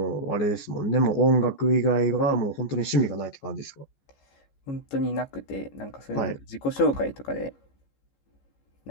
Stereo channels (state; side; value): late; right; 14 ms